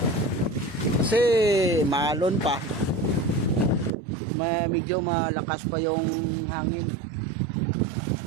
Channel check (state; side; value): drops out; left; at 4.0 s